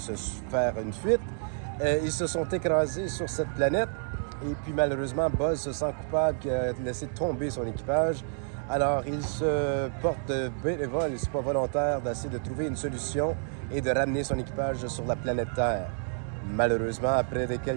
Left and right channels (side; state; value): left; silent; 58 dB below the other